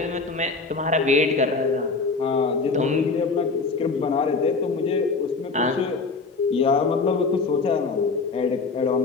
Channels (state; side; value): quieter; right; 4.2 dB